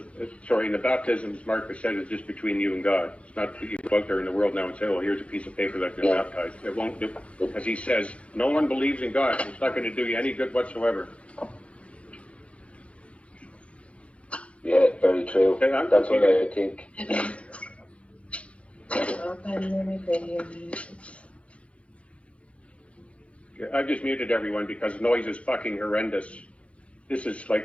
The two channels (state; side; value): late; right; 0.062 ms